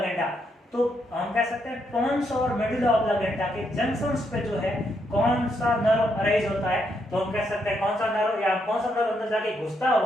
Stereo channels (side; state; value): both; normal; correlation 0.77